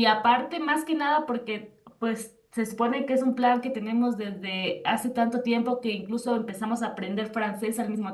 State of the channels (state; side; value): identical; both; correlation 1.00